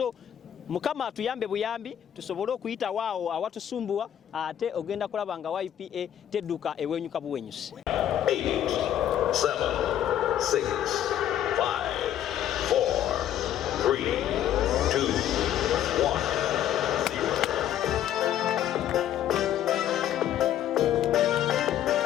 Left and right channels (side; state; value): right; quieter; 11.0 dB